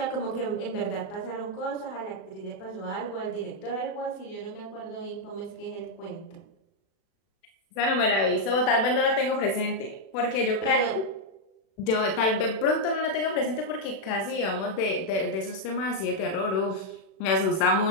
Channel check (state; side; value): late; right; 36 ms